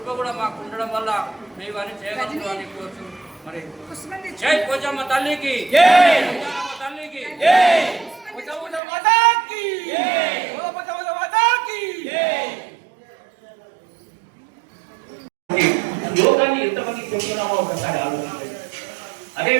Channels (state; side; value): drops out; left; at 8.8 s